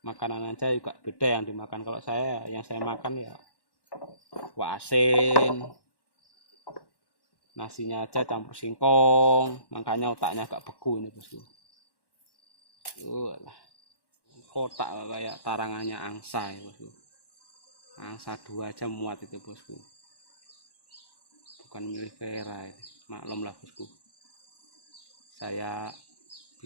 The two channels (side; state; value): right; late; 1.1 ms